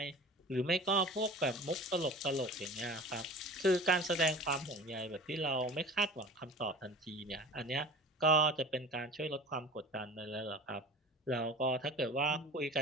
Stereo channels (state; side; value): normal; both; correlation 0.39